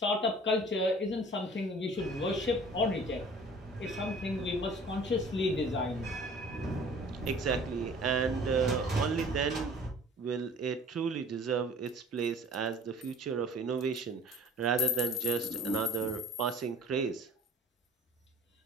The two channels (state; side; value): normal; both; correlation 0.48